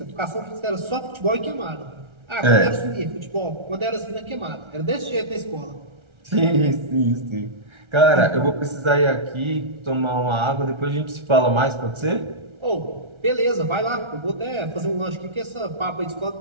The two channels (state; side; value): late; left; 1.3 ms